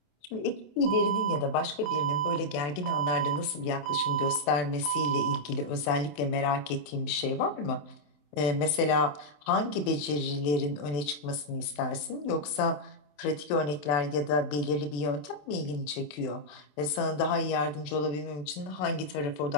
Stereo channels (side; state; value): right; late; 27 ms